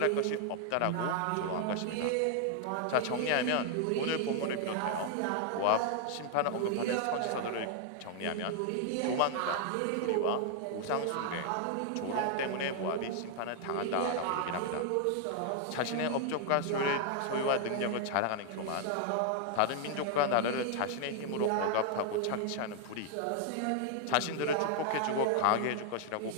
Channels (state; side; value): different; both; correlation 0.00